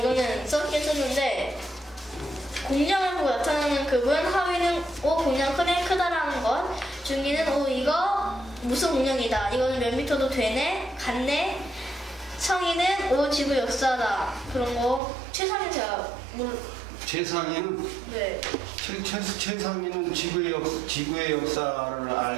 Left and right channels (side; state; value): left; drops out; at 15.0 s